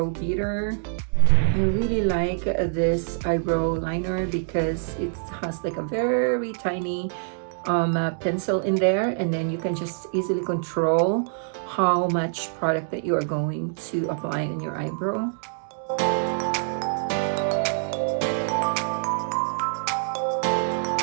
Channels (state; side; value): silent; left; digital silence